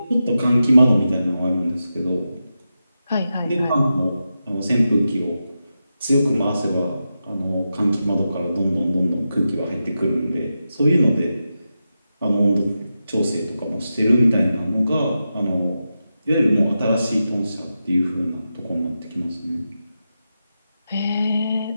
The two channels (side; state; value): both; inverted; correlation -0.90